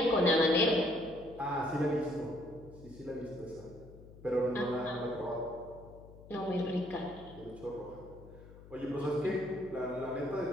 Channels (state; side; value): noise; left; hum, 19 dB below the sound